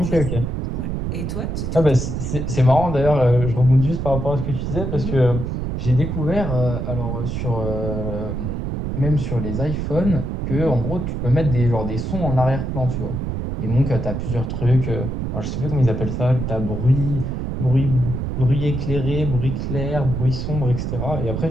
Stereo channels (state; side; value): noise; right; rumble, 3 dB below the sound